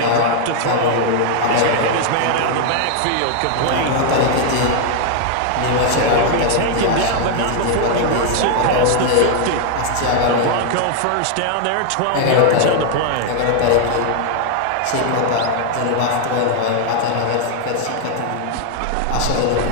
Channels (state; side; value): different; both; correlation 0.00